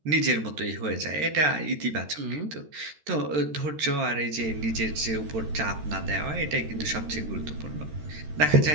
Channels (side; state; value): left; late; 13 ms